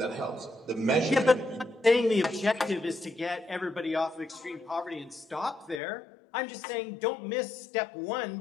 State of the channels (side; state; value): right; drops out; at 5.8 s